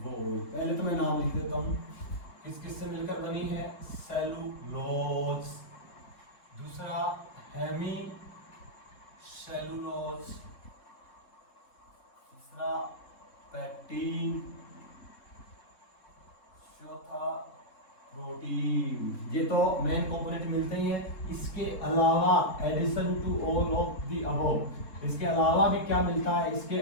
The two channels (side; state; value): right; late; 3.7 ms